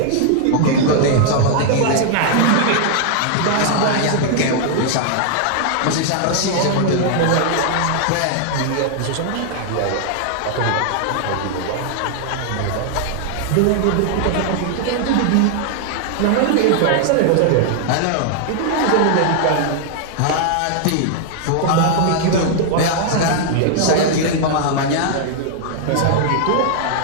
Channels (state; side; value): different; both; correlation 0.00